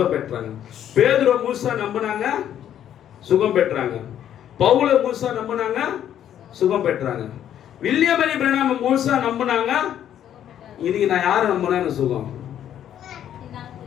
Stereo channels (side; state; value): right; quieter; 10.4 dB